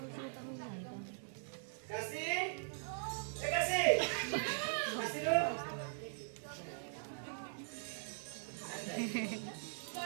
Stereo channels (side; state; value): left; silent; digital silence